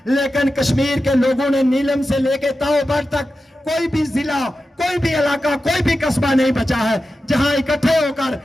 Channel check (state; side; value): normal; both; correlation 0.92